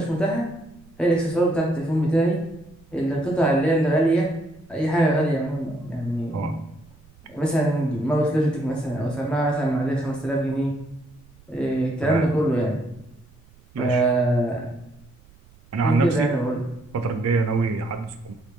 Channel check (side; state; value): right; noise; rumble, 27 dB below the sound